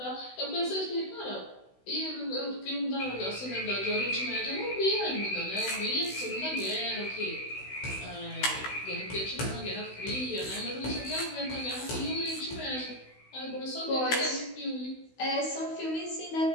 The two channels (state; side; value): late; right; 16 ms